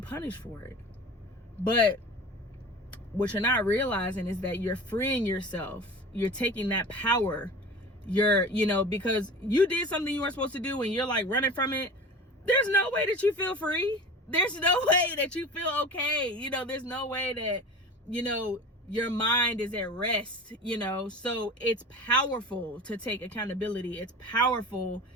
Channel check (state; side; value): normal; both; correlation 0.36